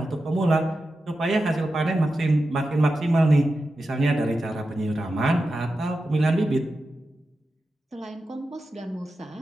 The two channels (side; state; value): both; normal; correlation 0.91